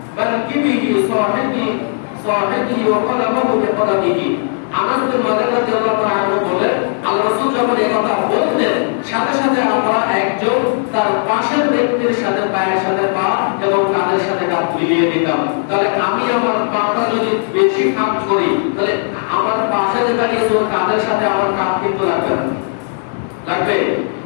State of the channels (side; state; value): right; silent; 69 dB below the other